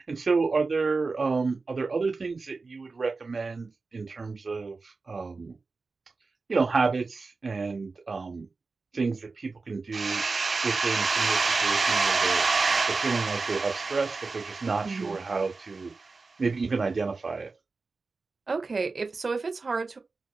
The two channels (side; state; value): left; quieter; 4.0 dB